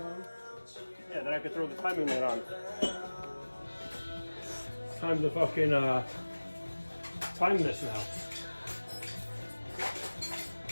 then I could throw the timing light on. Time to fucking time this now.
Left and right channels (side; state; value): both; inverted; correlation -1.00